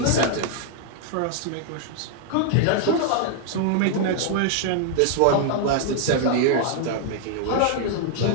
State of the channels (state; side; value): different; both; correlation 0.00